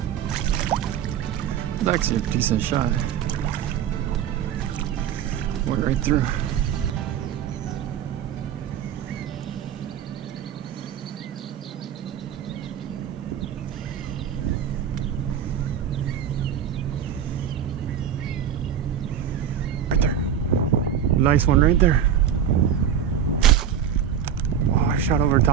It's actually a decent shot. Went right through. nice one right there. Oh, I shot over the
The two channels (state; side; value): quieter; left; 8.6 dB